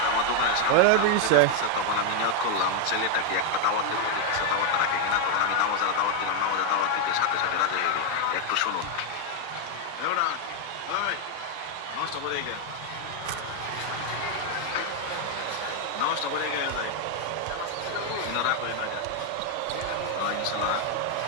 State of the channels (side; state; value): both; different; correlation 0.01